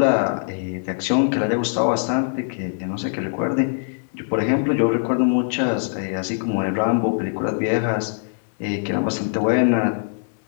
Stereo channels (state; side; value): silent; right; digital silence